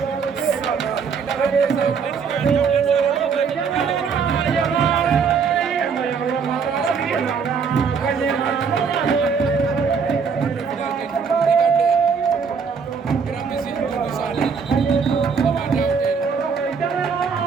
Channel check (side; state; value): left; quieter; 5.9 dB